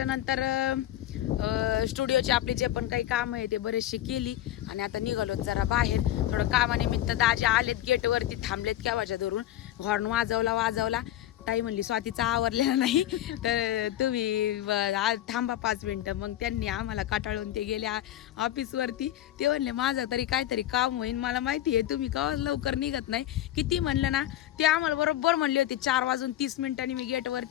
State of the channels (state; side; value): quieter; right; 13.1 dB